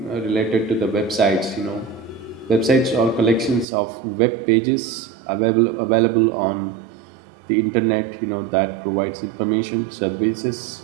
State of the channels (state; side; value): drops out; left; at 3.7 s